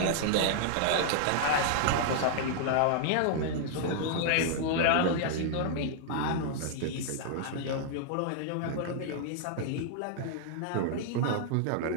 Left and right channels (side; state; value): both; different; correlation -0.01